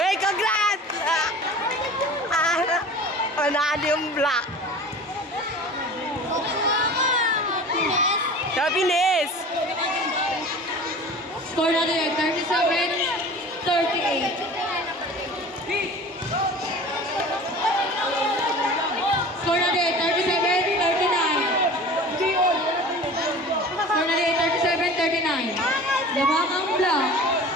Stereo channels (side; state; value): both; normal; correlation 0.40